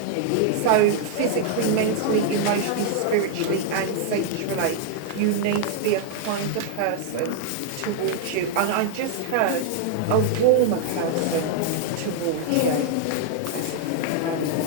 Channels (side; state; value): both; different; correlation 0.00